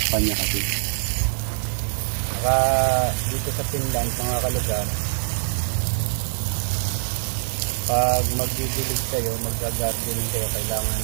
niya kasi. Saka dito sa Finland mga kalugar, pag magdidilig kayo, mag-gardening kayo, kailangan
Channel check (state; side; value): silent; left; digital silence